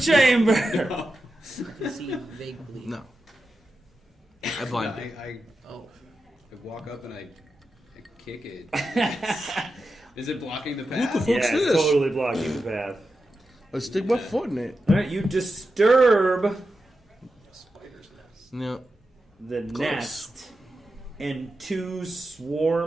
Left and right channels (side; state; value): both; normal; correlation 0.90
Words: I can see vaguely. No. I blind you. I Oh, walk up and I kick it. Is it blocking the What path? the fuck? Yeah, What's it's this? totally blocking the path. Let's stick my foot in it. All right, you disturb Spider's nest. No. the Close. nest, and 2